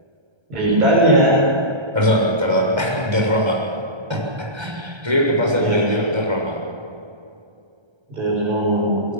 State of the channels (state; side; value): late; left; 1.3 ms